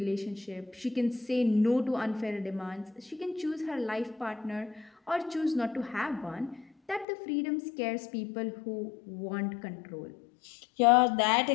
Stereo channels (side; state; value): right; drops out; at 7.1 s